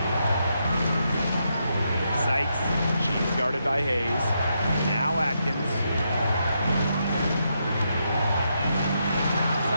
Sykes. She's guarded by Hayes. Now Atkins.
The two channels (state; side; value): inverted; both; correlation -0.81